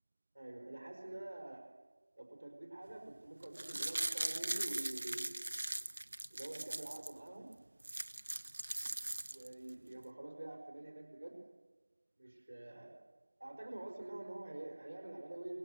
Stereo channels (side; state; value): both; inverted; correlation -1.00